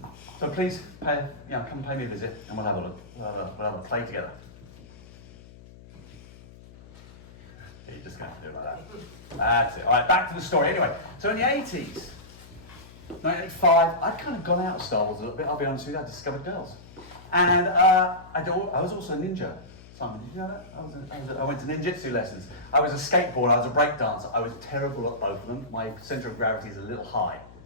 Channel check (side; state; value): left; noise; hum, 20 dB below the sound